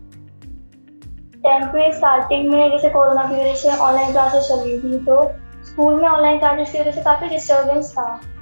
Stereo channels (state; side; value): inverted; both; correlation -1.00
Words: 10th में स्टार्टिंग में जैसे कोरोना की वजह से ऑनलाइन क्लासेस चल रही थी, तो स्कूल में ऑनलाइन क्लासेस की वजह से काफ़ी डिस्टर्बेंस था।